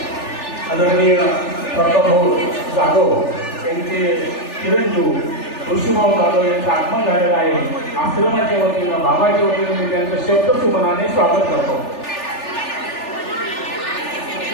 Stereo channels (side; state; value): right; late; 3.4 ms